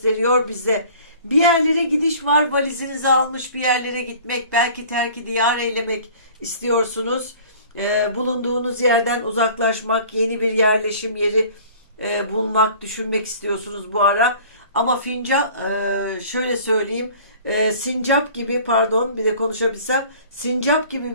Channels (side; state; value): both; inverted; correlation -0.47